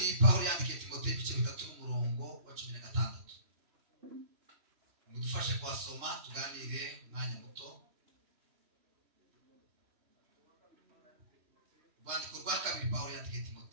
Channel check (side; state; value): left; late; 3.1 ms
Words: Pawulo yandikiye Timoteyo ibice 3 n'umurongo wa 16. Mudufashe kwasoma tuganire umwanya muto. Urwandiko rwa kabiri Pawulo yandikiye